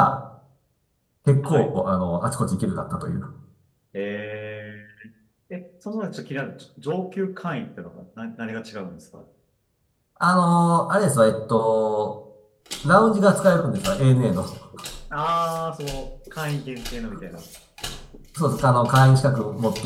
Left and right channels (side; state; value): both; identical; correlation 1.00